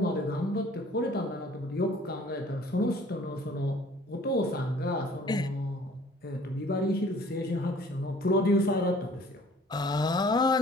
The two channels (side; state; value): both; normal; correlation 0.53